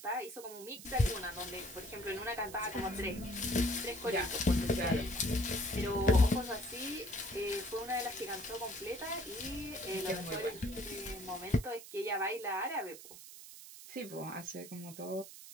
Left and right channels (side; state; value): right; noise; hiss, 14 dB below the sound